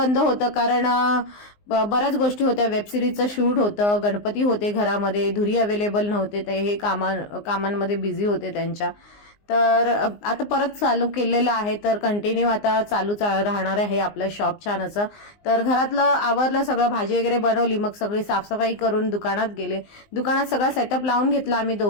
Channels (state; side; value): late; right; 19 ms